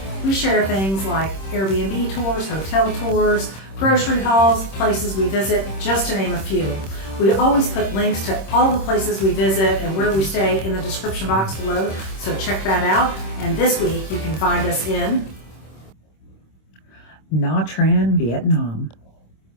We share things like Airbnb tours, hotel tours, grocery hauls, places we visit, just to name a few. We always put links to all the places we visit and where we stay in the description box below, so check that out. And this week you can find us in Nha Trang, Vietnam.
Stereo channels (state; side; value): late; right; 26 ms